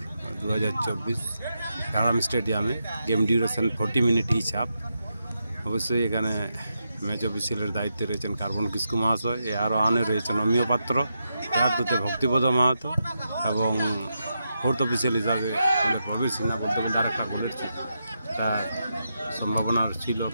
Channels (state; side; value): inverted; both; correlation -0.85